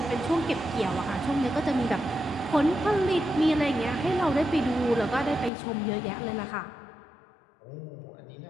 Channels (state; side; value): drops out; right; at 5.5 s